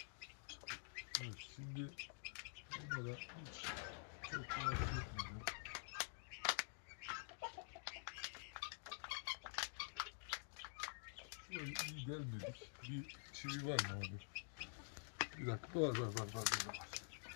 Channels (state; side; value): silent; right; digital silence